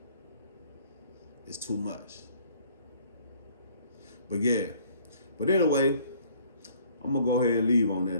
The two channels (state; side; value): inverted; both; correlation -0.58